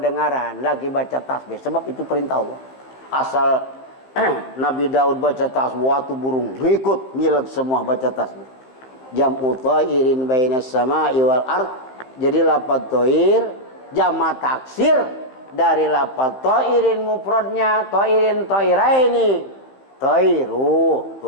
lagi baca tasbih. Sebab itu perintah Allah. Asal Nabi Daud baca tasbih, waktu burung ngikut ngilag semua baca tasbih. Jam'u thairin bainas sama'i wal ard. Jadi lafaz thair jama' taksir dari lafaz thairin mufradnya thairin thairaini. Thairu,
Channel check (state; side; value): late; right; 15 ms